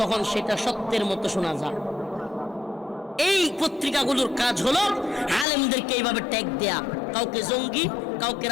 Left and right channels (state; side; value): drops out; right; at 5.5 s